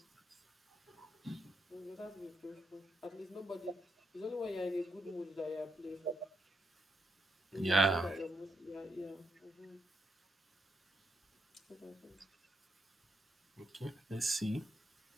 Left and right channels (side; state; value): both; normal; correlation 0.80